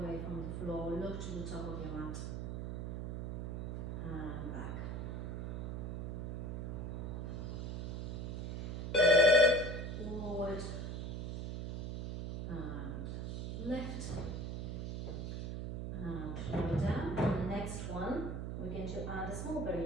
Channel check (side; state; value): right; noise; hum, 3 dB below the sound